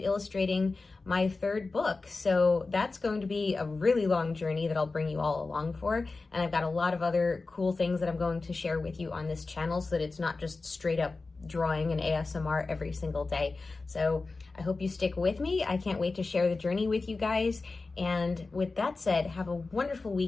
illustrating my third book. So that's going to be a really long journey that I'll bring you all along for. And I've got a lot of other cool things that I'm going to share with you on this channel, so that it's not just straight up drawing and ASMR every single day. So I hope you stick with me. I can't wait to share the journey with you guys. And with that said, have a wonderful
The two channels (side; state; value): right; quieter; 3.7 dB